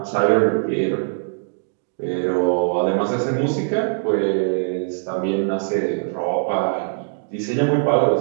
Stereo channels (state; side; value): silent; left; digital silence